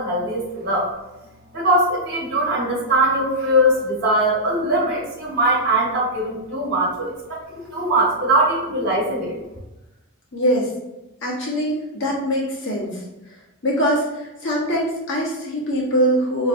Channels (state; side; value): normal; both; correlation -0.07